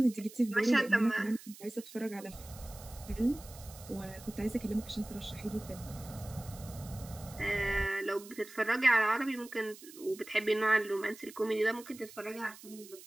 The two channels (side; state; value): right; noise; hiss, 18 dB below the sound